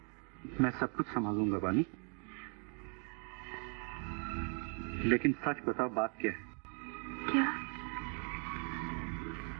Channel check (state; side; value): quieter; left; 38.7 dB